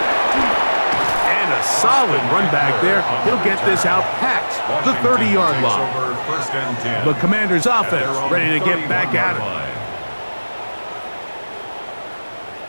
And a solid run back there. He'll get this out past the 30-yard line. The Commanders' offense ready to get back at it.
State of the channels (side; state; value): both; inverted; correlation -1.00